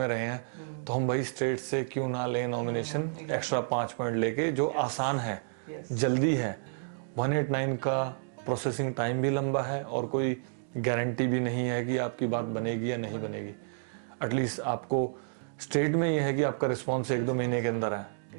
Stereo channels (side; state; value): left; silent; digital silence